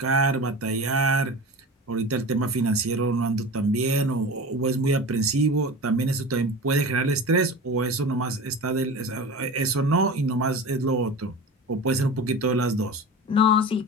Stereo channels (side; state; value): both; normal; correlation 0.32